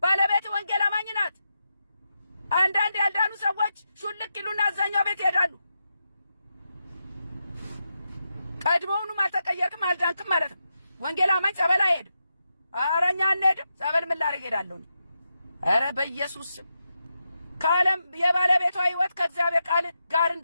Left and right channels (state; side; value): inverted; both; correlation -0.86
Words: ባለቤት ወንጌል አማኝ ናት አንዳንድ ያልዳኑ ሰዎች ሹልክ ይሉና አዛኛው ቤት ይሄዳሉ ቀድሞውንም አልተቀየርክም አልዳንክም ማለት ነው ወንጌል አማኝ ጸበል አይሄድም አረኛ እንሄድም ጸበል ምን ላደርግ ሄዳለሁ አረ በኢየሱስ ከዓለም የባለቤቷ ህይወት ከእግዚአብሔር ቃል ጋር